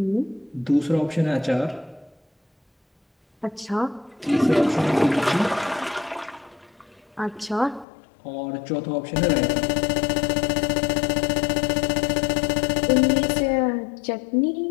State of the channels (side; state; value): right; drops out; at 7.9 s